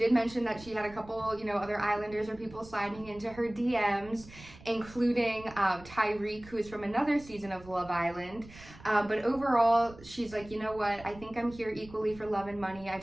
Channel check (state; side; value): noise; right; rumble, 19 dB below the sound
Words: mention that she had a couple, other Islanders or people sliding into her DMs, including Tyreek, who is from another season of Love Island. But overall, she's like, you know what? I think I'm here equally for love and money. I